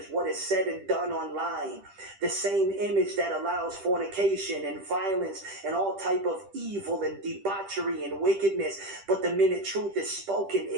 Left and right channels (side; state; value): left; late; 10 ms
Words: what is said and done online. The same image that allows fornication and violence and all type of evil and debauchery and wickedness. But the minute truth is spoken,